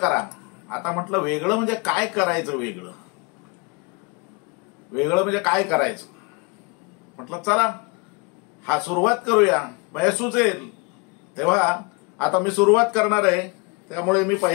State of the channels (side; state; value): right; quieter; 30.3 dB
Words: आता म्हटलं वेगळं म्हणजे काय करायचं? वेगळं म्हणजे काय करायचं? म्हटलं चला हा सुरुवात करूया, म्हणजे सुचेल तेव्हा. आता मी सुरुवात करणार आहे, त्यामुळे मी